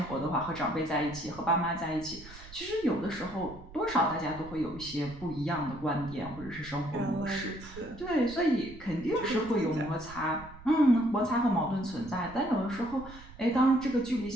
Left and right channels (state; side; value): noise; right; rumble, 17 dB below the sound